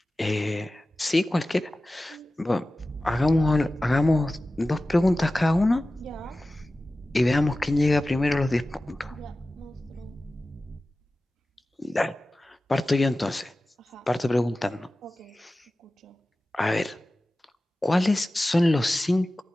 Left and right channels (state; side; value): normal; both; correlation 0.96